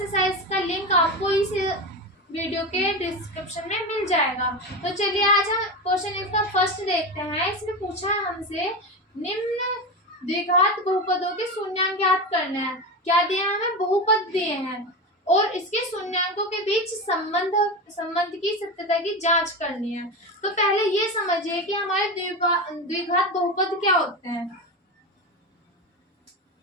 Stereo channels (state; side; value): normal; both; correlation 0.21